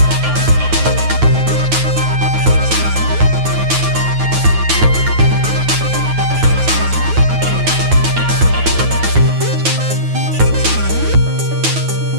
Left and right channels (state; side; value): late; left; 9.3 ms